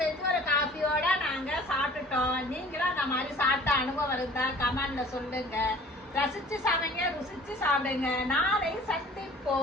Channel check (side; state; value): both; normal; correlation 0.48